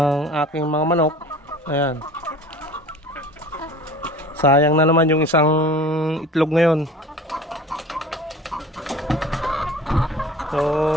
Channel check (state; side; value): normal; both; correlation 0.42